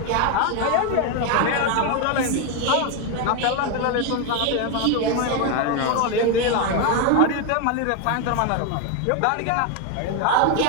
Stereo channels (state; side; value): different; both; correlation 0.02